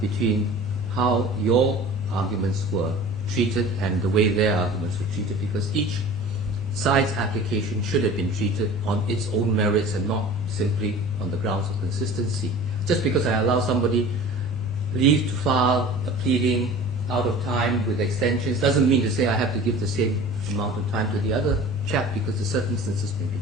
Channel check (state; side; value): normal; both; correlation 0.41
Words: how your arguments were treated and the way their arguments were treated, because each side's application should have been treated on its own merits and not simply on the grounds of consistency. Just because I allow somebody leave to file a pleading out of time with extensions doesn't mean to say I have to give the same amount of time to the other chap, because the circumstances may be